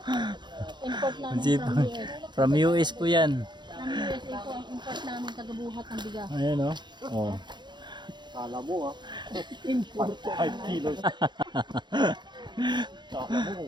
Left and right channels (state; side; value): late; left; 0.22 ms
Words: Import Ang namin sipag. From US po yan. From USA po ang import namin tagabuhat ng bigas. Ayan o. Oh. Kala mo import 5 kilos. Kala mo